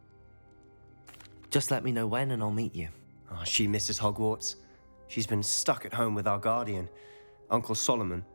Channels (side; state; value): both; inverted; correlation -1.00